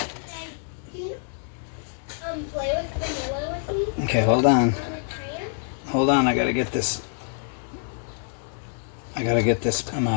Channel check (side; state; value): right; silent; digital silence